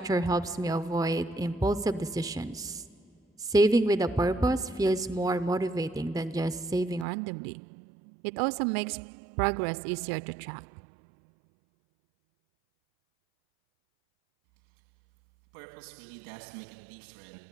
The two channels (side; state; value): left; drops out; at 7.1 s